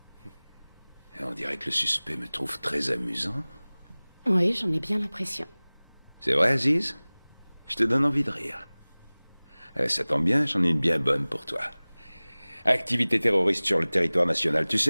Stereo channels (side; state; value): both; inverted; correlation -1.00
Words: Et on dirait que le suspect me trouve très amusant. Oui, j'en ai bien l'impression. C'est vrai, Aziz? Je te donne envie de rire. Ça tombe bien, j'en ai une bien bonne pour toi. Activité terroriste sur le territoire national, tu